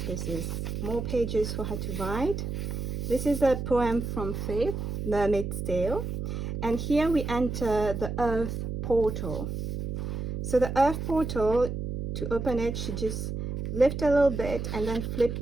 This is more pages for her to write. This is a poem from Faith, Mermaid's Tale. And here we enter the earth portal. So the earth portal, to open it, she just lift a little bit and then flip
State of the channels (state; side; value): noise; right; hum, 4 dB below the sound